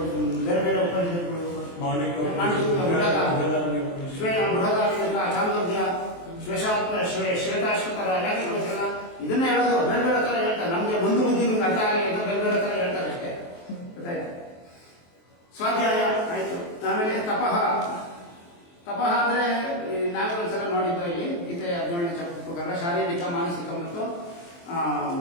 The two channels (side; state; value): right; late; 23 ms